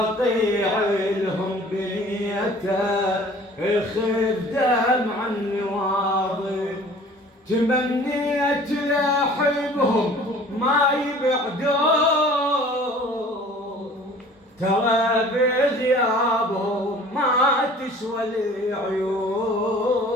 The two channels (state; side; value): normal; both; correlation 0.48